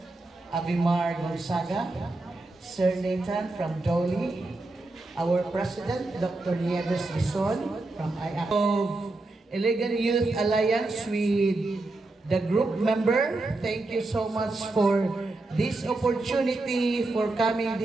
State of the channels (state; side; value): quieter; left; 3.1 dB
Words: Abimar Gonzaga, Sir Nathan from Dolly, our President, Dr. Nieves Bison from I-Access, of Elegant Youth Alliance with the group member. Thank you so much for this opportunity for coming